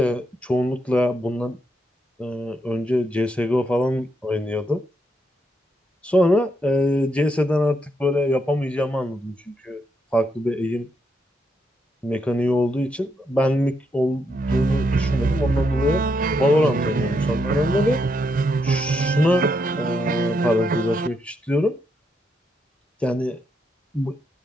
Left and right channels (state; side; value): normal; both; correlation 0.79